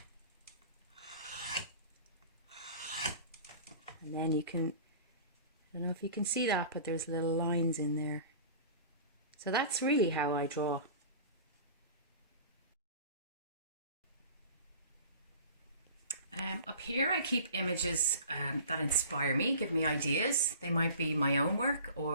And then you can, I don't know if you can see that, but there's little lines in there. So that's really how I draw. Up here I keep images that inspire me, give me ideas. They might be my own work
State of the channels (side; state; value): both; inverted; correlation -0.41